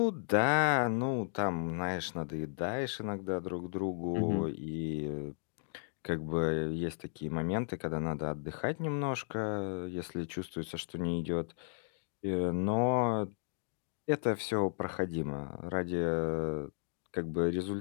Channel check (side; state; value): right; silent; digital silence